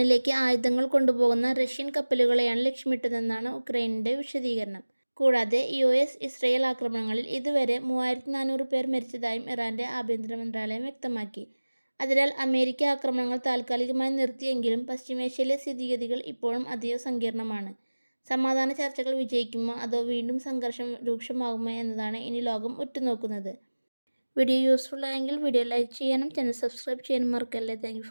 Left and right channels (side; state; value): both; inverted; correlation -1.00